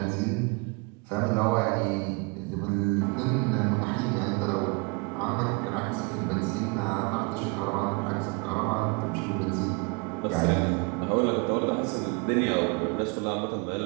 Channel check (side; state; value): left; quieter; 31.2 dB